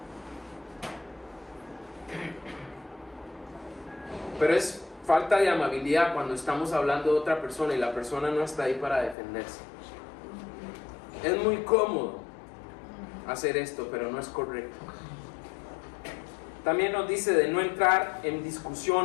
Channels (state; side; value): drops out; right; at 9.2 s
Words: Pero es falta de amabilidad cuando estamos hablando de otra persona y la persona no está ahí para defenderse. Es muy cómodo hacer esto, pero no es correcto. También nos dice de no entrar en